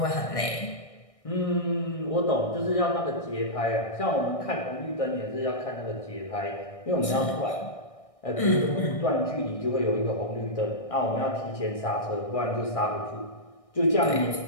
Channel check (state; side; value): late; right; 1.6 ms